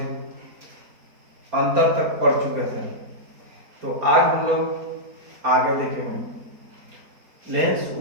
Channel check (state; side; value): late; left; 4.3 ms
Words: अंतर तक पढ़ चुके थे। तो आज हम लोग आगे देखेंगे। लेंस,